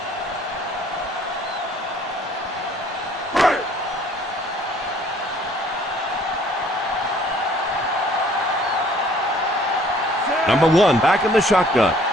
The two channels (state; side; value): normal; both; correlation 0.57